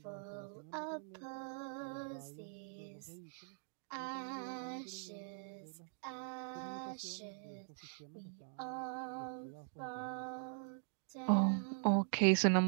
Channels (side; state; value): left; silent; digital silence